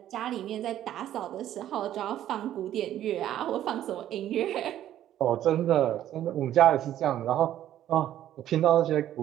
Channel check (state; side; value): quieter; left; 12.0 dB